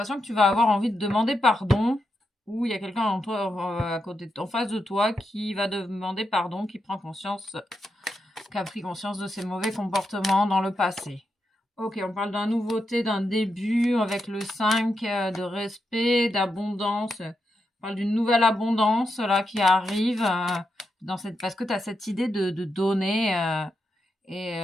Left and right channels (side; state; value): both; normal; correlation 0.85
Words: que tu vas avoir envie de demander pardon, ou il y a quelqu'un en toi, à côté, en face de toi, qui va demander pardon, qui a pris conscience de ses mauvais comportements dans le passé. Ok, on parle d'une nouveauté, d'un début avec le 5, de respect, d'abondance. On parle d'une nouvelle abondance là qui arrive parce que tu as cette idée de donner